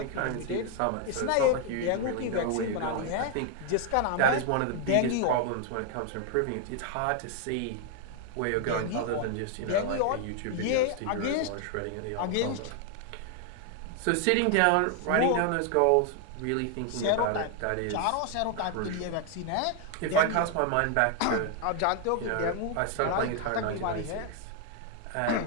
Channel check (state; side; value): different; both; correlation 0.00